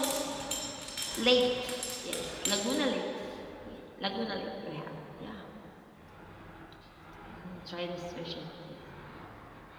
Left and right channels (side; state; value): both; identical; correlation 1.00